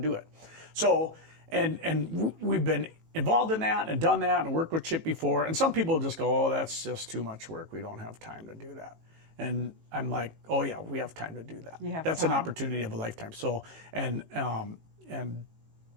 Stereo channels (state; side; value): late; left; 18 ms